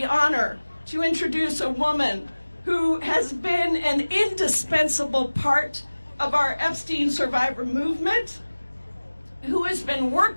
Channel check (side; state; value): both; inverted; correlation -1.00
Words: honor to introduce a woman who has been an indispensable part of our Epstein survivor movement, who has been